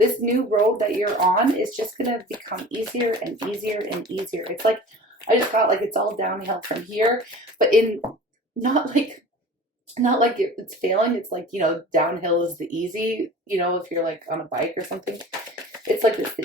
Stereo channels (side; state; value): both; normal; correlation 0.40